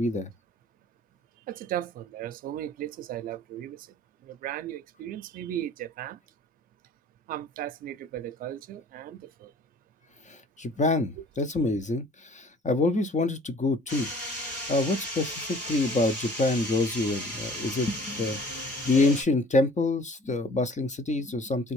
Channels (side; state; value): both; normal; correlation 0.50